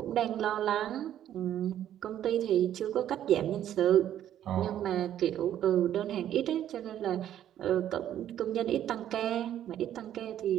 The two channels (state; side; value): quieter; left; 11.1 dB